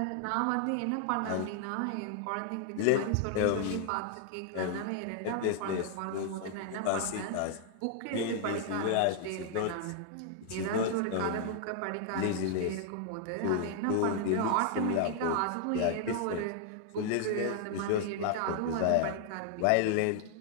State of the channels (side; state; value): both; different; correlation 0.00